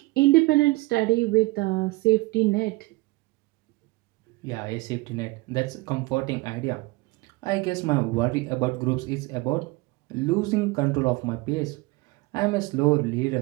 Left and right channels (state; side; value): quieter; left; 22.6 dB